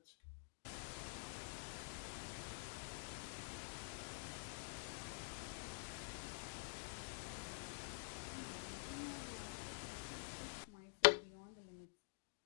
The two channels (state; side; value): silent; right; digital silence